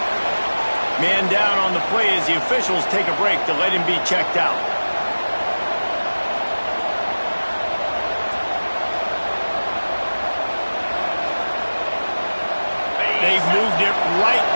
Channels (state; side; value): inverted; both; correlation -1.00